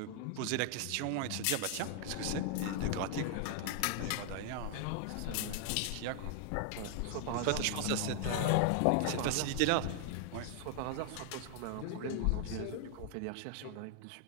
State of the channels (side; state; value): both; different; correlation 0.00